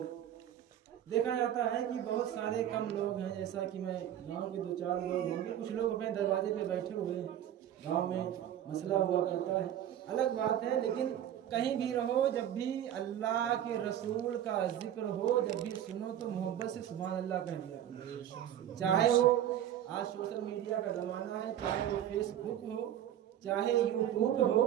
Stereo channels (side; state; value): left; quieter; 11.0 dB